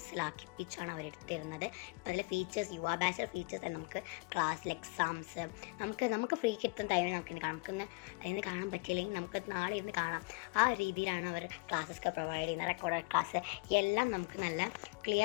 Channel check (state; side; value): quieter; right; 28.1 dB